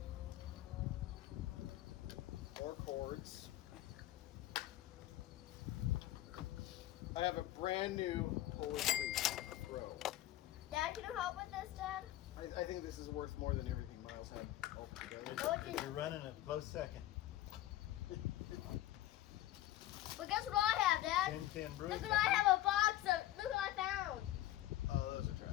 More cords. I have a brand new Holy Creek Pro. Dad, can you help with this, Dad? I think this is worth more than everything Miles had all together. No, it didn't. You're running a close second. But guess what I have, Dad? 10-10 brew. Look what I have a box of. Look what I found. Oh, those are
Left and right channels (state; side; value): quieter; right; 14.6 dB